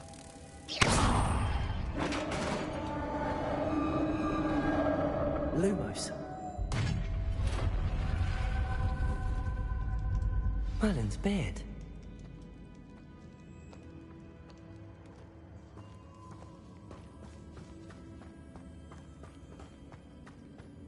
Lumos. Merlin's beard.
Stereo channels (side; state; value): both; identical; correlation 1.00